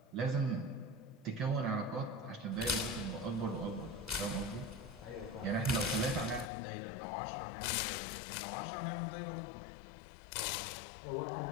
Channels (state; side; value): drops out; right; at 6.5 s